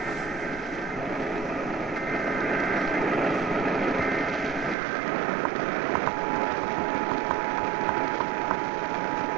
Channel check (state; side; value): drops out; left; at 4.8 s